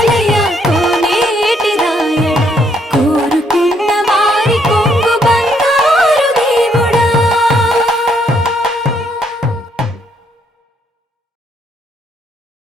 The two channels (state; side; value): normal; both; correlation 0.71